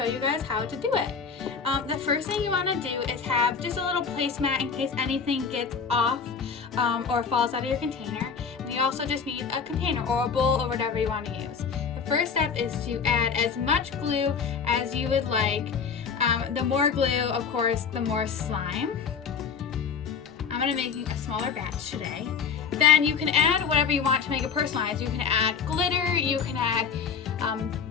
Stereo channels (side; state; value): right; quieter; 6.2 dB